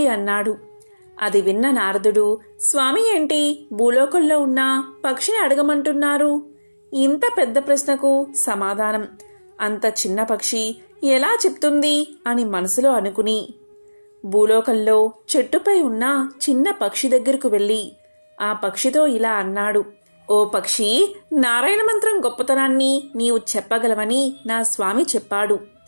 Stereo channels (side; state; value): both; inverted; correlation -1.00